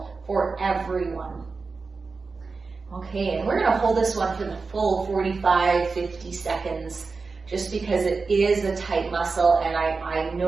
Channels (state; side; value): quieter; left; 4.4 dB